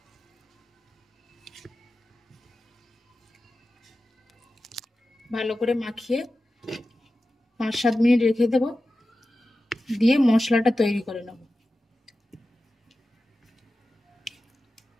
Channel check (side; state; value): both; normal; correlation 0.94